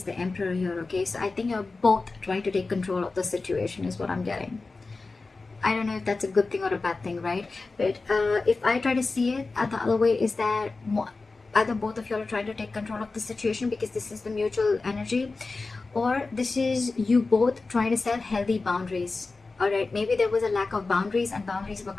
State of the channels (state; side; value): quieter; right; 3.8 dB